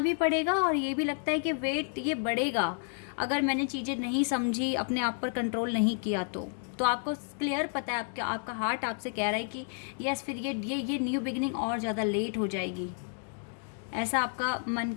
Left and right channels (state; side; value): silent; right; 57 dB below the other